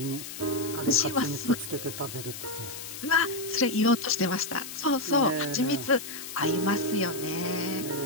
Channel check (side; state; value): left; noise; hiss, 10 dB below the sound